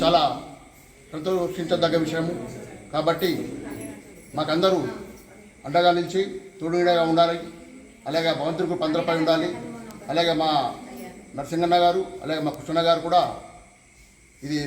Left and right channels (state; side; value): identical; both; correlation 1.00